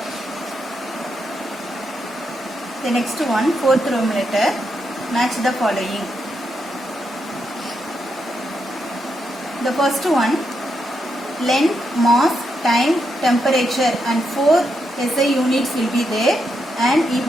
The next one, fourth Roman letter, match the following. The first one, length, mass, time, temperature and 4 SI units will be there and you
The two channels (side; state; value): both; normal; correlation 0.82